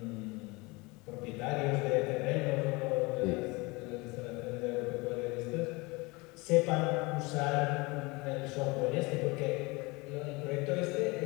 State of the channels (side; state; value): right; quieter; 25.1 dB